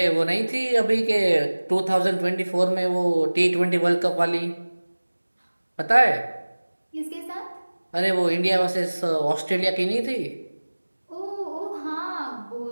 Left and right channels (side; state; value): both; inverted; correlation -1.00